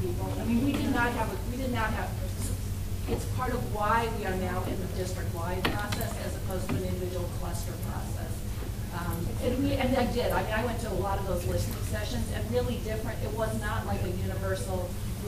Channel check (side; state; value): both; identical; correlation 1.00